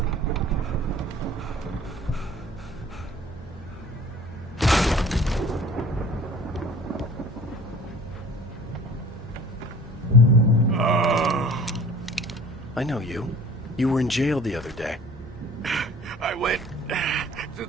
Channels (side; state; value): both; normal; correlation 0.47